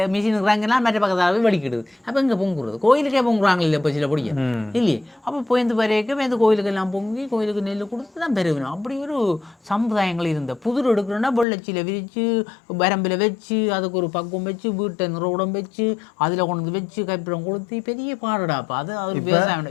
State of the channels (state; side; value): drops out; right; at 11.5 s